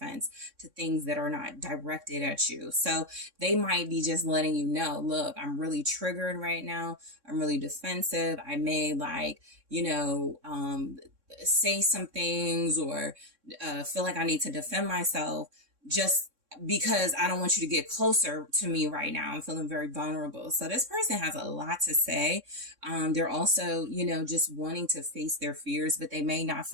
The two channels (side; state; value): left; late; 3.6 ms